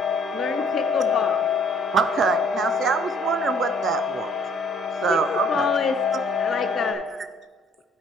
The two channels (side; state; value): both; normal; correlation 0.60